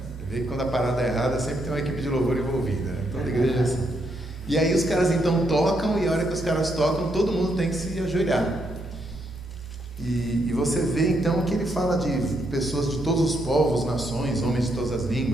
Você vê que quando a parada é errada sempre tem uma equipe de louvor envolvida, né? Toda igreja é assim. E aí os caras então tocam, e a hora que os caras tocam, todo mundo tem que se ajoelhar. E você vê então que ele fala de pessoas de todos os povos, nações, homens de todas as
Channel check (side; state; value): both; normal; correlation 0.77